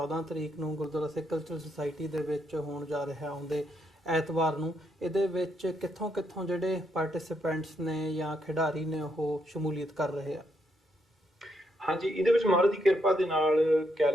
ਤਰੀਕ ਨੂੰ ਗੁਰਦੁਆਰਾ ਸਿੱਖ ਕਲਚਰਲ ਸੁਸਾਇਟੀ ਦੇ ਵਿੱਚ ਹੋਣ ਜਾ ਰਿਹਾ ਆਉਂਦੇ ਐਤਵਾਰ ਨੂੰ, ਇਹਦੇ ਵਿੱਚ ਕਿੱਥੋਂ ਜਿਹੜੇ ਪਾਰਟਿਸਿਪੈਂਟਸ ਨੇ ਜਾਂ ਖਿਡਾਰੀ ਨੇ ਉਹ ਸ਼ਮੂਲੀਅਤ ਕਰ ਰਹੇ ਆ? ਹਾਂਜੀ, ਇਹਦੇ ਵਿੱਚ ਮਹਾਰਾਜ ਦੀ ਕਿਰਪਾ ਦੇ ਨਾਲ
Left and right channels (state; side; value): normal; both; correlation 0.77